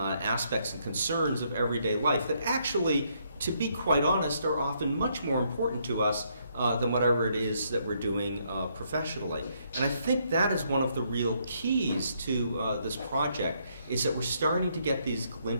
and concerns of everyday life that actually, to be quite honest, are often much more important to us than whatever it is that we're doing professionally. And I think that is one of the real keys to this project, is that we're starting to get these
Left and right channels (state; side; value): inverted; both; correlation -0.72